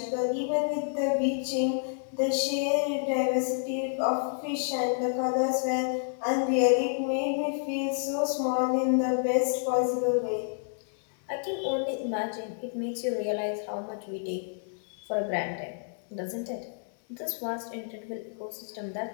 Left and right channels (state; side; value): silent; right; digital silence